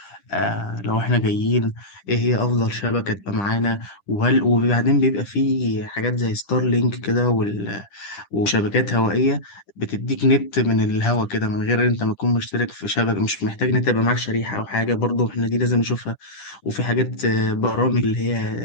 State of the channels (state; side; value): late; right; 10 ms